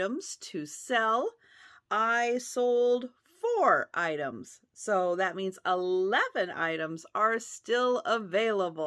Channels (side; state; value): both; identical; correlation 1.00